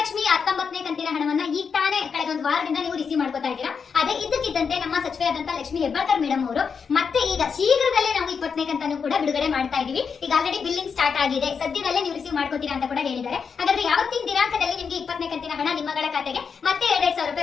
19ನೇ ಕಂತಿನ ಹಣವನ್ನ ಈಗ ತಾನೇ ಕಳೆದ ಒಂದು ವಾರದಿಂದ ನೀವು ರಿಸೀವ್ ಮಾಡ್ಕೊತಾ ಇದ್ದೀರಾ. ಅದೇ ಇದ್ದಕ್ಕಿದ್ದಂತೆ ನಮ್ಮ ಸಚಿವೆಯಾದಂತ ಲಕ್ಷ್ಮಿ ಹೆಬ್ಬಾಳ್ಕರ್ ಮೇಡಮ್ ಅವರು ಮತ್ತೆ ಈಗ ಶೀಘ್ರದಲ್ಲೇ ನಾವು 20ನೇ ಕಂತನ್ನು ಕೂಡ ಬಿಡುಗಡೆ ಮಾಡ್ತಾ ಇದೀವಿ. ಈಗ ಆಲ್ರೆಡಿ ಬಿಲ್ಲಿಂಗ್ ಸ್ಟಾರ್ಟ್ ಆಗಿದೆ, ಸದ್ಯದಲ್ಲೇ ನೀವು ರಿಸೀವ್ ಮಾಡ್ಕೋತೀರಾ ಅಂತ ಕೂಡ ಹೇಳಿದ್ದಾರೆ. ಹಾಗಾದ್ರೆ ಯಾವತ್ತಿನ ದಿನಾಂಕದಲ್ಲಿ ನಿಮಗೆ 20ನೇ ಕಂತಿನ ಹಣ ನಿಮ್ಮಗಳ ಖಾತೆಗೆ ಮತ್ತೆ 2,000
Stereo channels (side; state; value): right; quieter; 6.0 dB